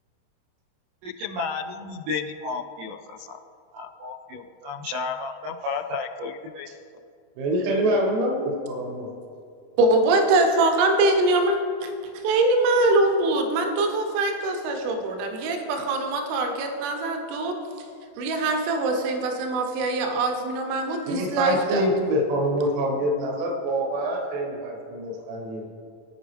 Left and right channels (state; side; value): late; left; 28 ms